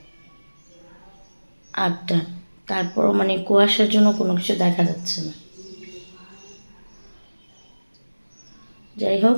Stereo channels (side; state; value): both; inverted; correlation -1.00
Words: 8টা, তারপরও মানে কুয়াশার জন্য কোনো কিছু দেখা যাচ্ছে না। যাই হোক,